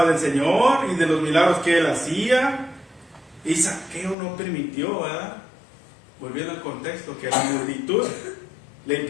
del Señor y de los milagros que él hacía, y Zaqueo no permitió, ¿verdad? Volviendo al contexto, que la le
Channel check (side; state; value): right; drops out; at 4.2 s